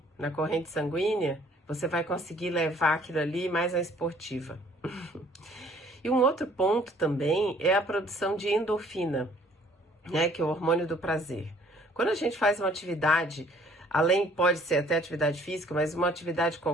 na corrente sanguínea, você vai conseguir levar aquilo ali mais à esportiva. E um outro ponto também é a produção de endorfina, né, que é o hormônio do prazer. Quando a gente faz uma atividade, além pode ser até atividade física, mas uma atividade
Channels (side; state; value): both; normal; correlation 0.58